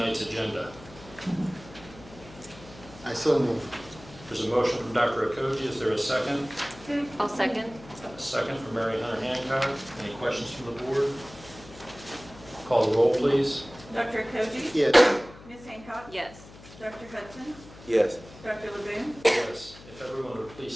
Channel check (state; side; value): noise; left; hum, 19 dB below the sound